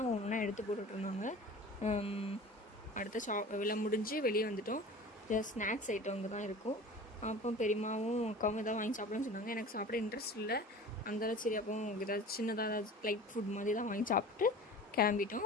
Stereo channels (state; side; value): normal; both; correlation 0.39